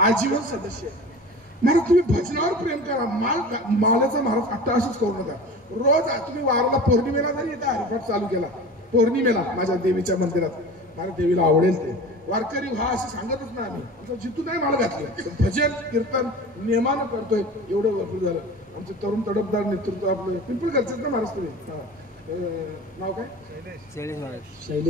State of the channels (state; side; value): normal; both; correlation 0.36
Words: आजीवन सदस्य आहे. महाराज तुम्ही भजनावर प्रेम करा, मालाचा महाराज अट्टाहासच करू नका. रोज तुम्ही वाराला पौर्णिमेला जरी इथं हरिपाठ चालू केला, पौर्णिमेला माझ्या देवीच्या मंदिरात, मला देवीला आवडेल ते वारकरी व्हा असं सांगतच नाही आम्ही. आमचं जिथून नाही माल घातलं, भजन कीर्तन नियमानं करतोय, एवढं भरपूर झालं. आमचं तरुण तडफदार नेतृत्व आपलं पिंपळगडचं ना महाराज तुम्ही नाव काय?